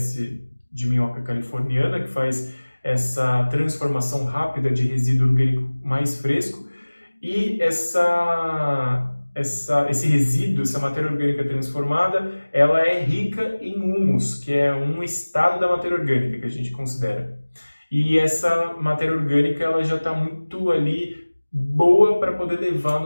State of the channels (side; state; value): both; inverted; correlation -1.00